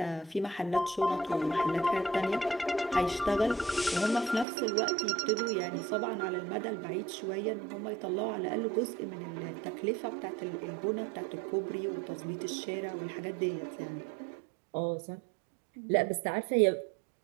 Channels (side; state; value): left; drops out; at 4.5 s